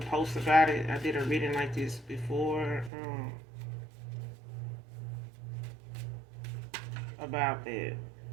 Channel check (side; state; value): left; drops out; at 2.9 s